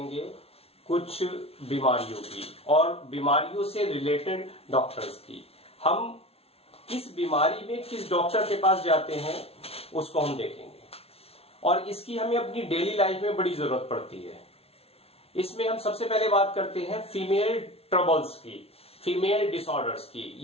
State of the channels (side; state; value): right; late; 0.29 ms